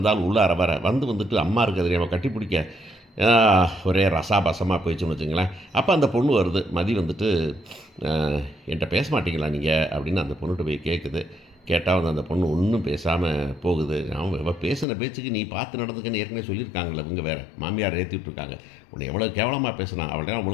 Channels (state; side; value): drops out; right; at 14.9 s